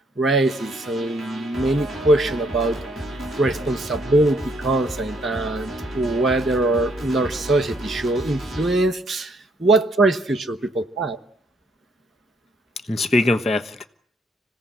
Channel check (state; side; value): normal; both; correlation 0.69